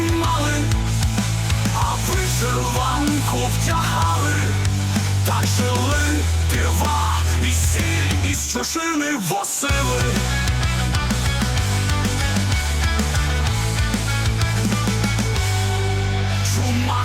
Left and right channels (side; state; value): both; identical; correlation 1.00